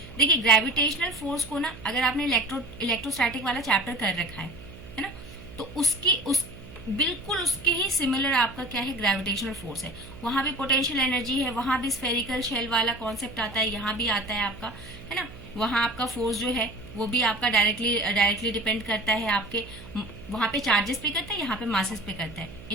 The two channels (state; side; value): noise; right; hum, 17 dB below the sound